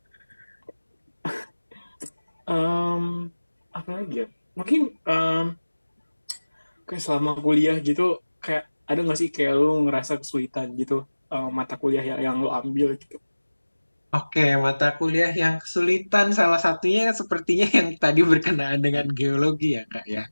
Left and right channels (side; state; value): both; inverted; correlation -1.00